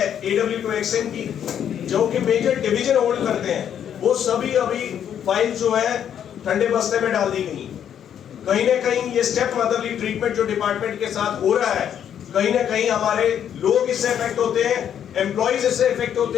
AW2 एक्शन की, जो कि मेजर डिवीजन होल्ड करते हैं, वो सभी अभी फाइल जो है ठंडे बस्ते में डाल दी गई। कहीं ना कहीं ये स्टेप मदरली ट्रीटमेंट जो डिपार्टमेंट के साथ हो रहा है, कहीं ना कहीं हमारे लोग इससे इफेक्ट होते हैं, एम्प्लॉइज इससे इफेक्ट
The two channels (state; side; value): quieter; right; 9.3 dB